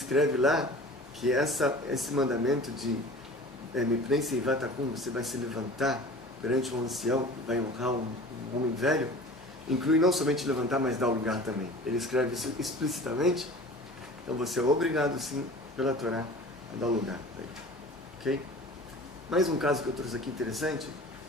lá que esse mandamento de Mipnei seivatakum, você vai se levantar perante um ancião, vai honrar um homem velho, inclui não somente levantar, mas dar o lugar também. Ele escreve isso explicitamente. Então você é obrigado, sim, pela Torá, a dar o lugar. Ok? Mais um caso que eu trouxe aqui interessante,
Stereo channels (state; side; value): normal; both; correlation 0.41